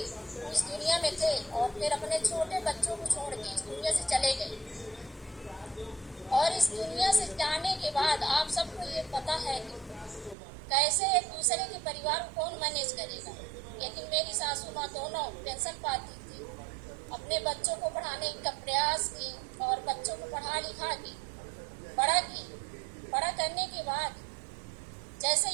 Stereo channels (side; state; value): left; drops out; at 10.4 s